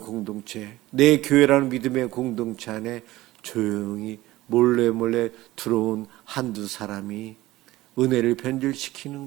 내 교회라는 믿음의 공동체 안에 조용히 몰래 들어온 한두 사람이 은혜를 변질시키는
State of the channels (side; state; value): left; quieter; 17.5 dB